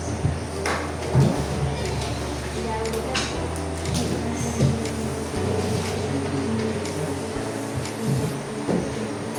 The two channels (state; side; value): identical; both; correlation 1.00